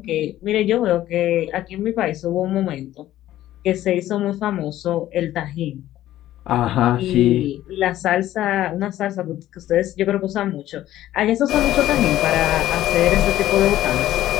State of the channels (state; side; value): quieter; right; 13.7 dB